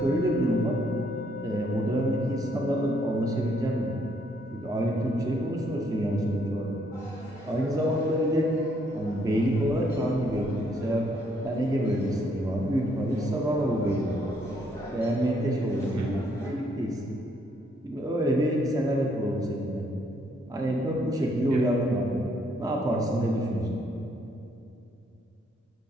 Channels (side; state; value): both; normal; correlation 0.69